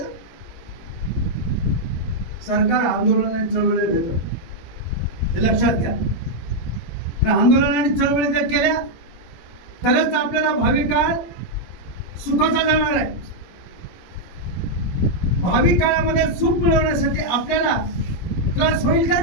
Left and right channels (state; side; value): late; right; 18 ms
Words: सरकार आंदोलन आणि चळवळी भेटत, ते लक्षात घ्या. आंदोलन आणि चळवळी जर केल्या तरच आपल्याला भावी काळ सुखाचा जाणार आहे. भावी काळामध्ये सुख मिळवण्यासाठी आपल्याला त्रास होईल का?